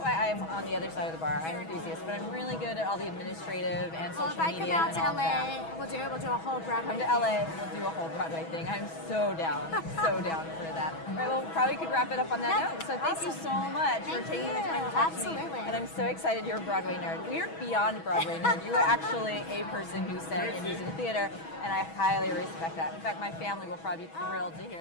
I'm on the other side of the bar. I'm an enthusiast, but I'm really good at all the administrative and social media and all If I come that. out to LA, we'll do it. We'll do a whole Broadway. Come to LA, we'll do a whole Broadway thing. I'm so down, so down for that. All right, well, probably could wrap it up on that note. So thank you so much for taking the time to talk to me. And I'm so excited you're a Broadway nerd. We are beyond Broadway nerd. You are actually a person who sang in musical theater, and I highly respect that. In fact, my family will probably be thrilled to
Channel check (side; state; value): right; late; 6.2 ms